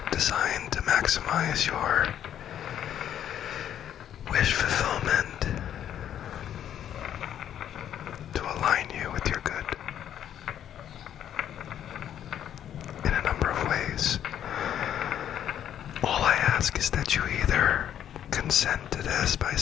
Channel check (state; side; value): quieter; right; 10.2 dB